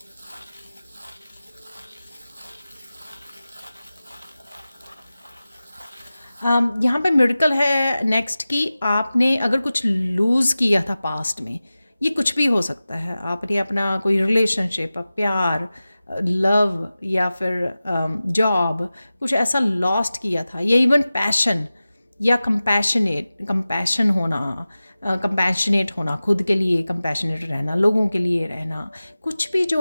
यहाँ पे मिरेकल है नेक्स्ट कि आपने अगर कुछ लूज़ किया था पास्ट में, ये कुछ भी हो सकता है, आपने अपना कोई रिलेशनशिप, प्यार, लव, या फिर जॉब, कुछ ऐसा लॉस्ट किया था, या इवन पैशन या कंपैशन होना, कंपैशनेट होना, खुद के लिए कंपैशनेट रहना, लोगों के लिए रहना, कुछ भी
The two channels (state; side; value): inverted; both; correlation -0.96